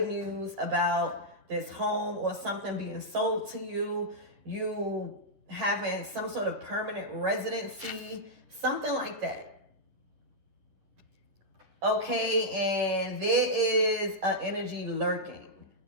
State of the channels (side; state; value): left; late; 10 ms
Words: news about this home or something being sold to you, you having some sort of permanent residency, something like that. Okay, and there is an energy lurking.